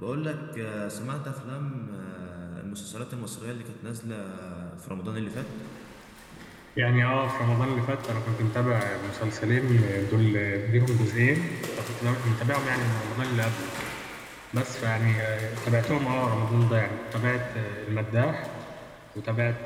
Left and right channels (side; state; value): both; identical; correlation 1.00